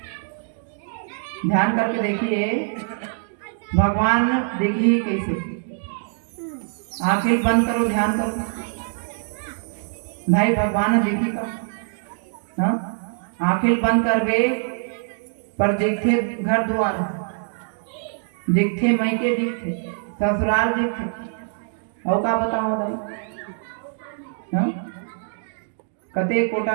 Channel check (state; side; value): silent; left; digital silence